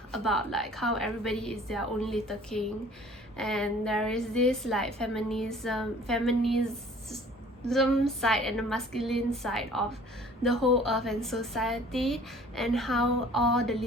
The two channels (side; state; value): both; normal; correlation 0.51